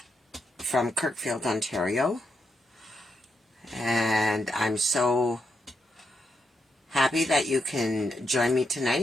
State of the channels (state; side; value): normal; both; correlation 0.82